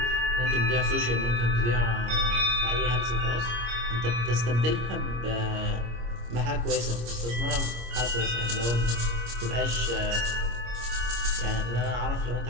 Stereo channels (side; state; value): left; late; 25 ms